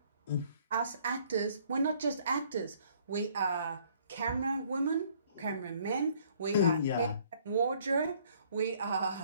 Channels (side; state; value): both; inverted; correlation -0.61